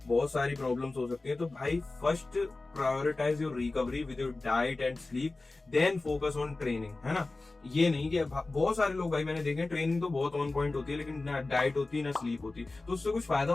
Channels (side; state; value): right; quieter; 3.3 dB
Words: बहुत सारी प्रॉब्लम्स हो सकती है। तो भाई first prioritize your recovery with your diet and sleep, then focus on training, है ना। ये नहीं कि बहुत सारे लोग भाई मैंने देखे ट्रेनिंग तो बहुत ऑन पॉइंट होती है, लेकिन ना डाइट होती है ना स्लीप होती, तो उससे कुछ फायदा